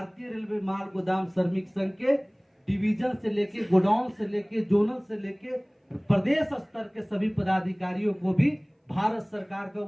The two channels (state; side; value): identical; both; correlation 1.00